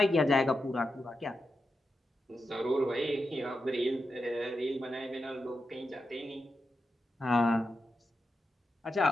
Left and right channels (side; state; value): both; normal; correlation 0.88